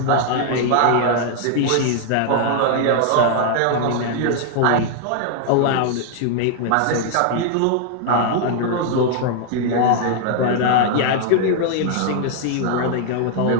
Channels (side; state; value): both; different; correlation 0.00